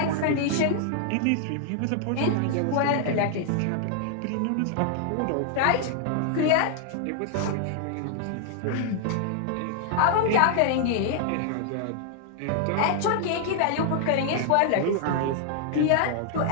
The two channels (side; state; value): both; different; correlation 0.00